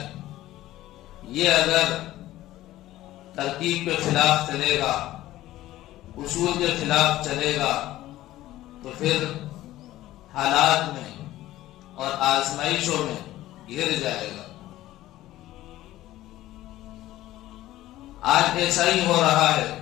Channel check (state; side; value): quieter; right; 15.3 dB